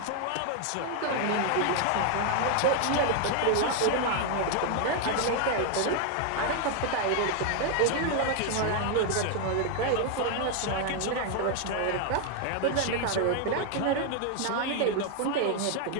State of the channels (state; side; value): different; both; correlation 0.00